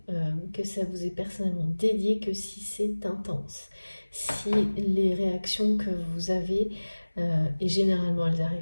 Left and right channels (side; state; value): both; inverted; correlation -1.00